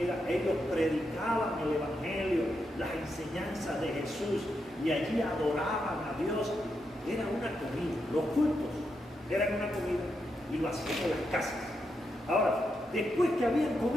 ellos predicaban el Evangelio, las enseñanzas de Jesús, y allí adoraban a Dios. Era una comida, los cultos eran una comida, y lo hacían en las casas. Ahora, después que habían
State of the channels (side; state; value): both; normal; correlation 0.84